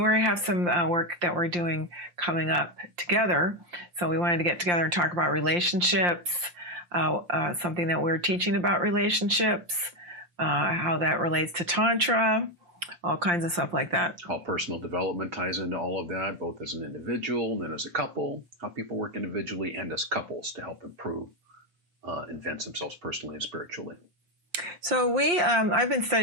we have some work that we're doing coming up together. So we wanted to get together and talk about relationships, something that we're teaching about relationships, how that relates to Tantra, all kinds of stuff like that. How personal development ties into all of that, both as an individual and as a couple, how people work individually and as couples to help improve advance themselves personally and spiritually. So I've been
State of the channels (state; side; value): late; left; 5.7 ms